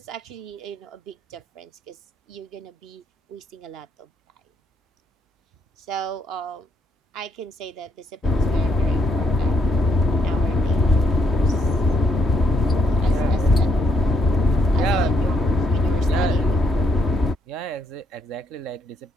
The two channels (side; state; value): both; normal; correlation 0.74